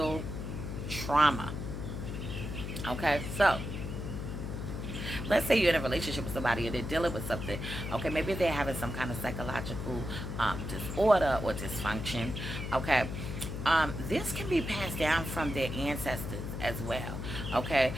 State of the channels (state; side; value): noise; left; hum, 5 dB below the sound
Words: trauma. Okay? So, let's say you're in a relationship with somebody and they're dealing with something. Okay, maybe they're having some kind of psychological disorder or dysfunction. Okay, this can be passed down from their ancestors as well. Okay,